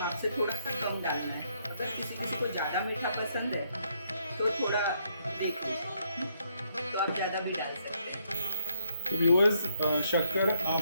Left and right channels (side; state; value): both; inverted; correlation -0.72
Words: से थोड़ा सा कम डालना है। अगर किसी को ज़्यादा मीठा पसंद है तो थोड़ा देखिए, तो आप ज़्यादा भी डाल सकते हैं। तो व्यूअर्स, शक्कर